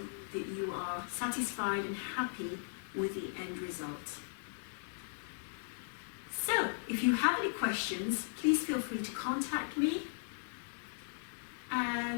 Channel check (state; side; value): silent; right; 53 dB below the other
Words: that you are satisfied and happy with the end result. So if you have any questions, please feel free to contact me.